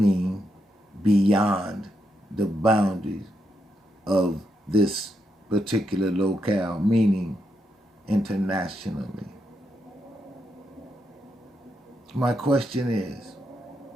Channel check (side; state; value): both; normal; correlation 0.81